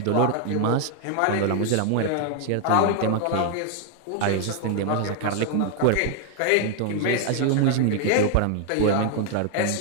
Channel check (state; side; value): different; both; correlation 0.00